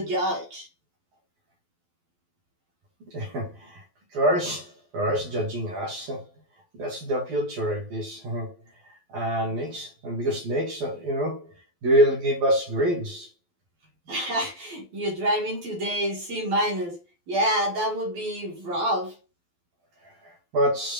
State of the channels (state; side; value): late; left; 12 ms